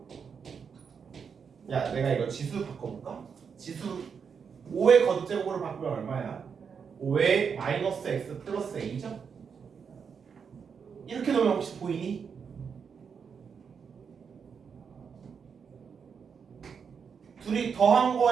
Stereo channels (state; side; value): quieter; left; 6.4 dB